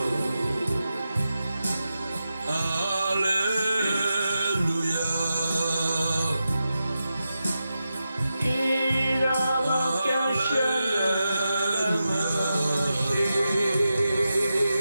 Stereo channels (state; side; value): inverted; both; correlation -0.90